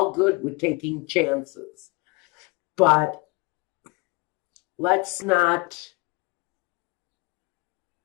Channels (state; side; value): quieter; right; 26.9 dB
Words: good with taking chances. But let's not